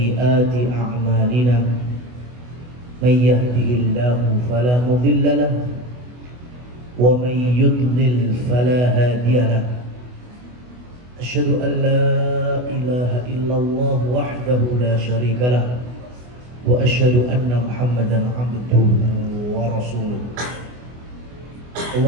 a'malina. من يهده الله فلا مضل له ومن يضلل فلا هادي له أشهد أن لا إله إلا الله وحده لا شريك له وأشهد أن محمدا عبده ورسوله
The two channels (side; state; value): left; late; 24 ms